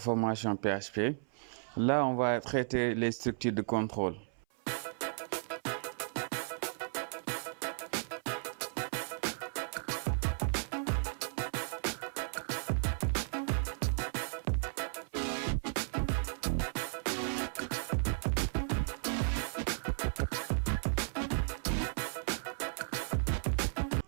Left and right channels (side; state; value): left; silent; 54 dB below the other